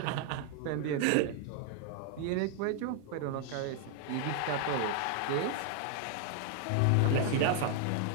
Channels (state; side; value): different; both; correlation 0.00